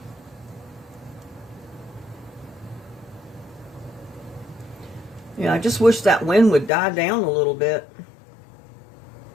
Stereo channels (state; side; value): drops out; right; at 6.7 s